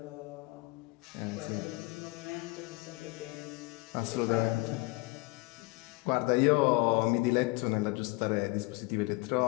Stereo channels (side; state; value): right; quieter; 25.0 dB